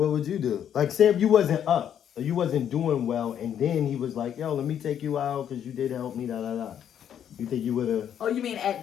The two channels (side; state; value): right; quieter; 9.4 dB